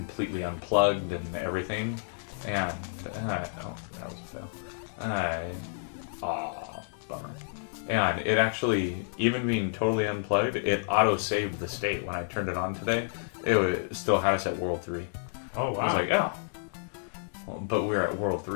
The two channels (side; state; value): right; silent; digital silence